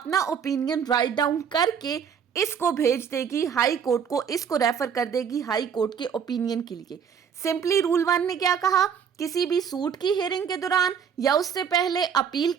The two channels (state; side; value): quieter; left; 7.4 dB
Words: ओपिनियन राइट डाउन करके इसको भेज देगी हाई कोर्ट को, इसको रेफर कर देगी हाई कोर्ट के ओपिनियन के लिए। सिंपली रूल 1 ने क्या कहा, किसी भी सूट की हियरिंग के दौरान या उससे पहले अपील